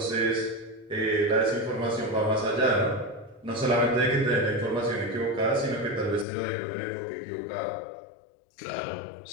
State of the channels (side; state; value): right; drops out; at 6.2 s